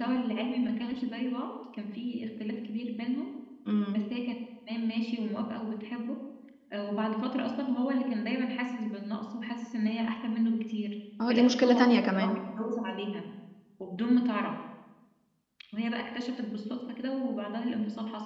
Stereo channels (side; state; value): both; identical; correlation 1.00